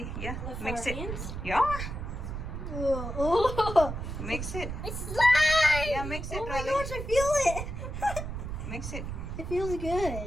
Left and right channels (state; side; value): noise; right; rumble, 6 dB below the sound